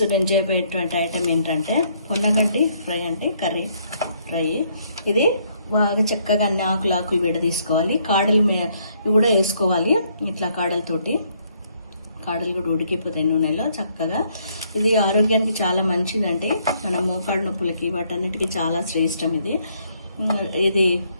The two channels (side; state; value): both; inverted; correlation -0.69